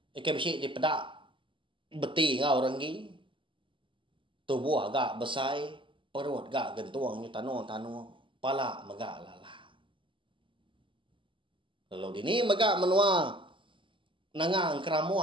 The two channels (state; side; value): late; left; 0.25 ms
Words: ikan besi di pedak, beti ngau renggi. Tubuh agak besai, perut agak gentuangnya tanu, pala megak lala. Lalu dini megak menua, nangang